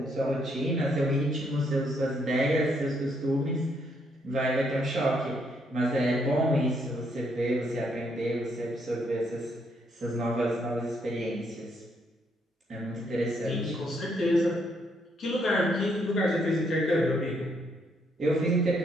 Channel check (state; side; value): normal; both; correlation 0.73